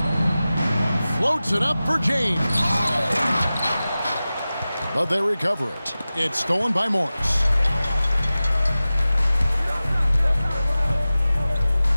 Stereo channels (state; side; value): inverted; both; correlation -0.96